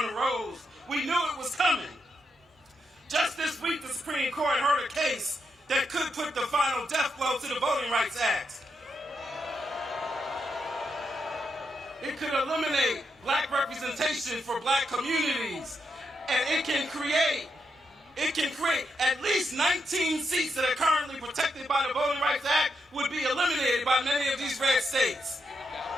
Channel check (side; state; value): both; normal; correlation 0.82